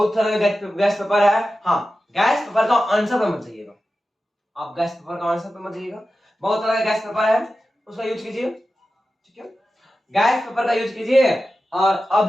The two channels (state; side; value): normal; both; correlation 0.93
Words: तरह का गैस पेपर है, हाँ गैस पेपर का आंसर पे मत जाइएगा, आप गैस पेपर का आंसर पे मत जाइएगा, बहुत तरह का गैस पेपर है उसका यूज कीजिए, ठीक है। गैस पेपर का यूज कीजिए और